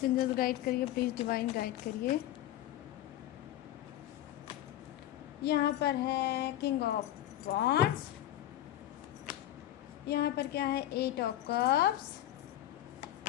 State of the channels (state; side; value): quieter; right; 13.3 dB